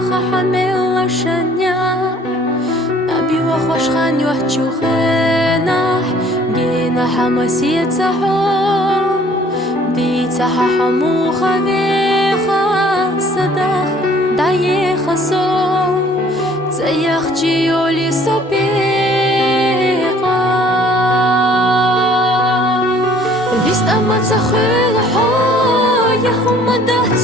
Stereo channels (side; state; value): both; normal; correlation 0.56